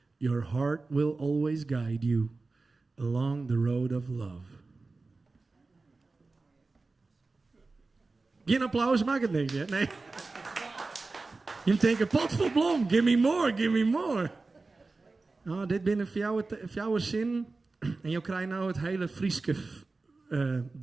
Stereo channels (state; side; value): quieter; left; 3.7 dB